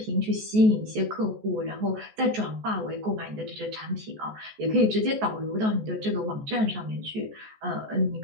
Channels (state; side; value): late; left; 14 ms